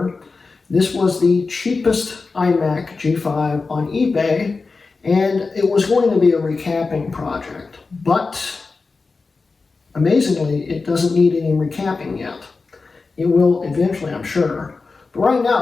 This was the cheapest iMac G5 on eBay, and it was going to be a recapping project. But amazingly, it doesn't need any recapping yet. It will eventually, I'm sure. But right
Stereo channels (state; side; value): quieter; right; 4.2 dB